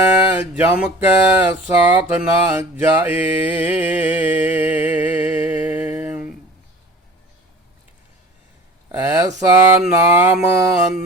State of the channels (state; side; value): normal; both; correlation 0.42